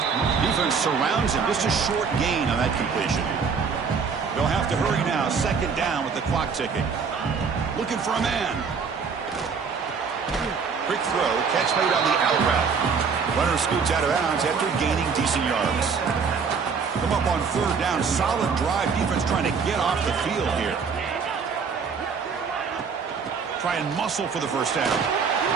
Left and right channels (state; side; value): quieter; left; 5.7 dB